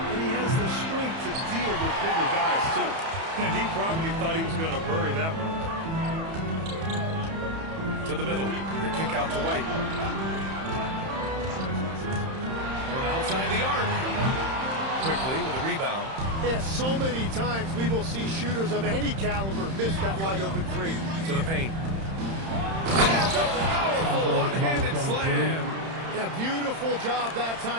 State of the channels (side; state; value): left; late; 31 ms